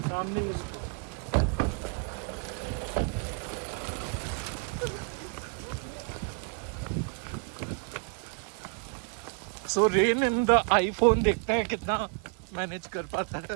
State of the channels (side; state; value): left; quieter; 37.4 dB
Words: सामने सो रेन इन द आईफोन देखते हैं कितना मैनेज कर पाता